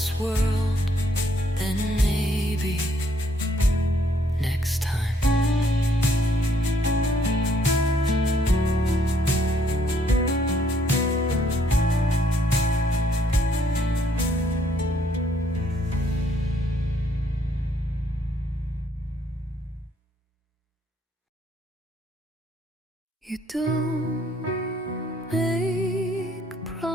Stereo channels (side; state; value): both; normal; correlation 0.67